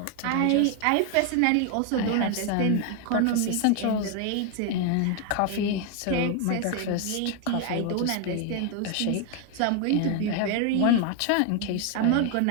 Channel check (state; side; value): different; both; correlation 0.01